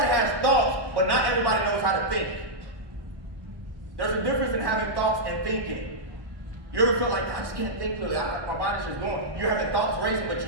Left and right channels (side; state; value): left; late; 1.1 ms